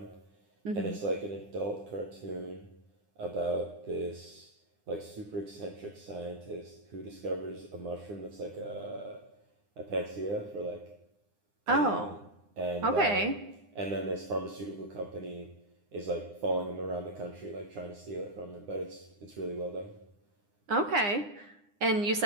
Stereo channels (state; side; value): late; left; 9.8 ms